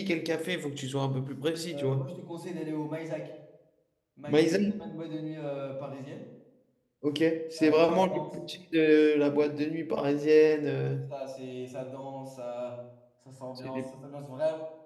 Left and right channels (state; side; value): identical; both; correlation 1.00